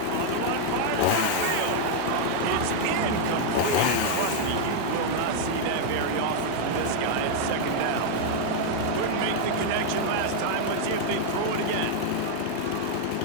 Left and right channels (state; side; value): different; both; correlation 0.00